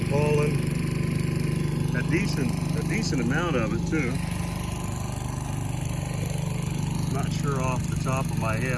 pollen. A decent amount of it too. Not sure off the top of my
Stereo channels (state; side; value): identical; both; correlation 1.00